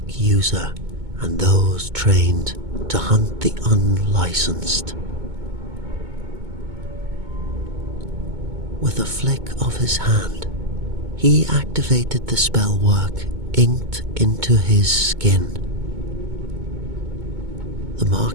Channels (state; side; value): late; left; 2.2 ms